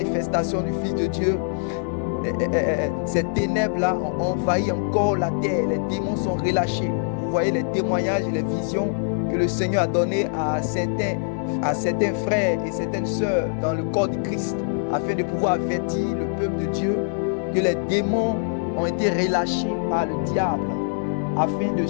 du Fils de Dieu, ces ténèbres-là ont envahi encore la terre. Les démons sont relâchés. Vous voyez les témoignages et les visions que le Seigneur a donné à certains frères et certaines sœurs dans le corps de Christ, afin de pouvoir avertir le peuple de Dieu que les démons ont été relâchés par le diable, afin de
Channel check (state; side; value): silent; right; digital silence